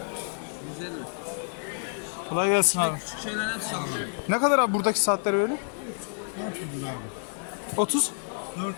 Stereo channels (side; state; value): right; silent; digital silence